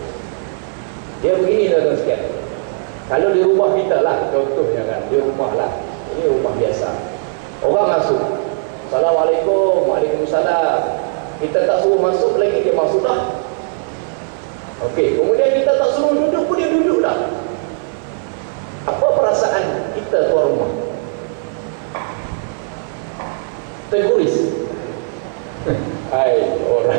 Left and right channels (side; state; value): left; silent; 56 dB below the other